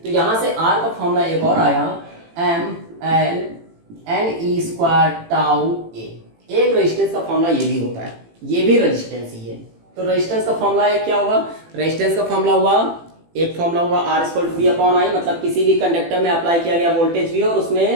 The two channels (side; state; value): left; late; 18 ms